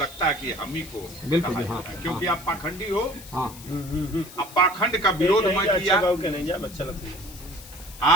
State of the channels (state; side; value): noise; left; hiss, 17 dB below the sound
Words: है कि हम ही को बिल्कुल, कहा हाँ, जाता है, क्योंकि आप पाखंडी हो। हाँ अब पाखंड का विरोध मैं किया।